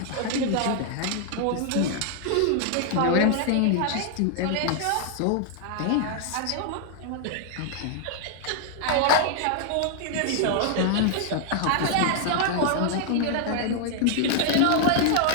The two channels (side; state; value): both; different; correlation 0.00